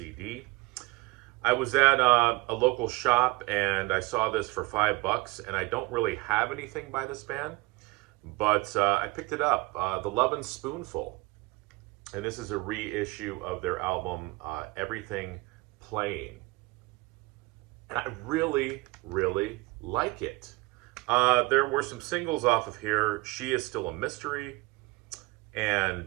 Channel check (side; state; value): left; quieter; 23.1 dB